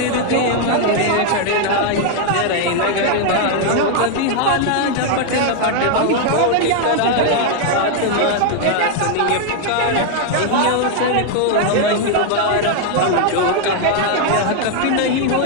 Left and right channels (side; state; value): both; different; correlation 0.01